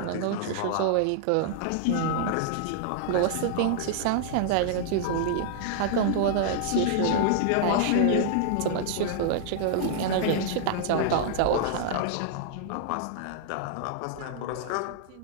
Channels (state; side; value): different; both; correlation -0.01